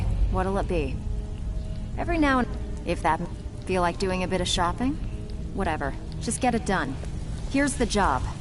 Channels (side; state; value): both; identical; correlation 1.00